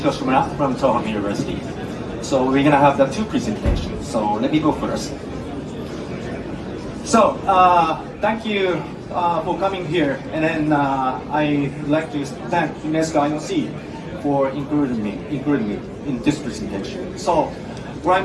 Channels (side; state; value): both; identical; correlation 1.00